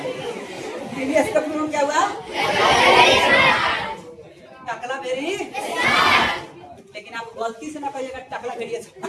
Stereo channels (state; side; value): identical; both; correlation 1.00